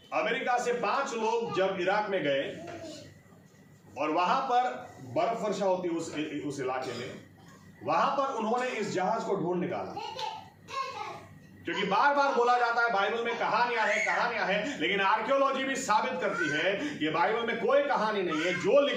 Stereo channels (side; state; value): both; identical; correlation 1.00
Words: अमेरिका से 5 लोग जब इराक में गए और वहां पर बर्फ वर्षा होती उस इलाके में, वहां पर उन्होंने इस जहाज को ढूंढ निकाला, क्योंकि बार बार बोला जाता है बाइबल में कहानियां हैं, लेकिन आर्कियोलॉजी भी साबित करती है कि बाइबल में कोई कहानी नहीं है, जो